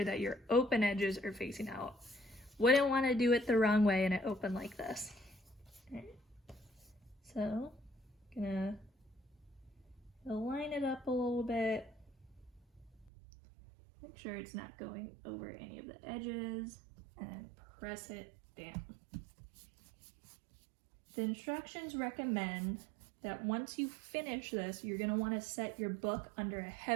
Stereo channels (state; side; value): drops out; left; at 13.1 s